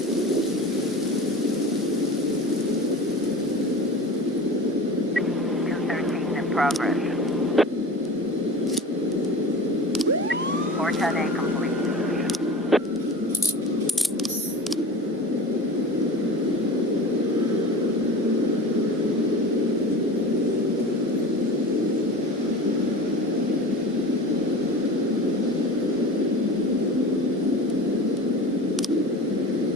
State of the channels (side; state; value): both; normal; correlation 0.35